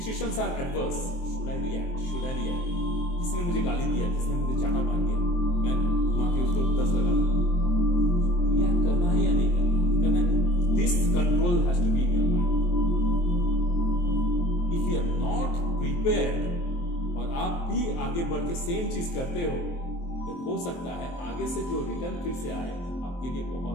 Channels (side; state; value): right; late; 23 ms